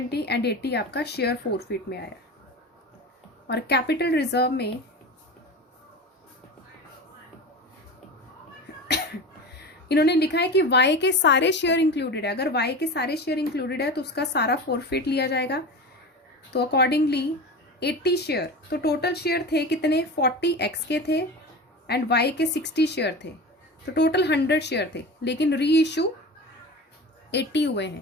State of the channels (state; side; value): normal; both; correlation 0.29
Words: and 80 आपका शेयर फोरफिट में आया। और कैपिटल रिजर्व में इन्होंने लिखा है कि वाई के सारे शेयर इंक्लूडेड है। अगर वाई के सारे शेयर इंक्लूडेड है तो उसका सारा फोरफिट लिया जाएगा। तो अकॉर्डिंगली 80 शेयर, तो टोटल शेयर थे कितने, 40 एक्स के थे एंड वाई के 60 शेयर थे, तो टोटल 100 शेयर थे, लेकिन री इशू 80 हुए